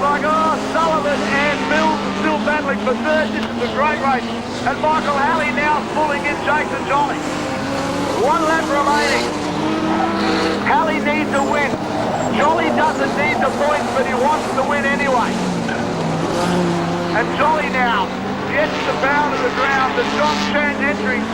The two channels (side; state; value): both; identical; correlation 1.00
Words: like. Oh, Sullivan and Mills are still battling for third. This is a great race. And Michael Halley now pulling in Jason Jolly. 1 lap remaining. Halley needs a win. Jolly doesn't need the points, but he wants to win anyway. And Jolly now gets the bow to the ground. The John Chan entry,